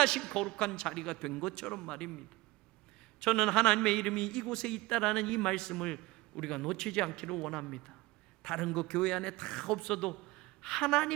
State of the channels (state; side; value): quieter; left; 20.8 dB